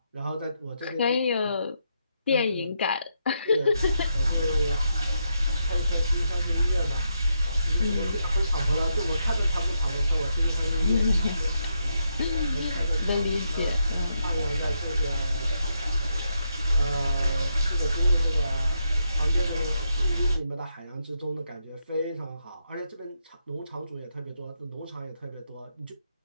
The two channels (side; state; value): both; inverted; correlation -0.80